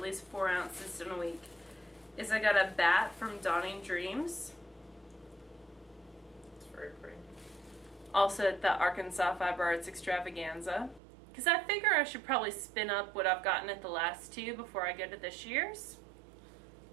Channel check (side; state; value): left; drops out; at 11.0 s